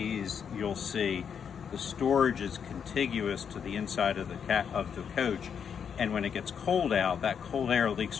you'll see the storage is contiguous to the inside of the coach, and when it gets cold out, that cold air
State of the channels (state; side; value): quieter; right; 7.3 dB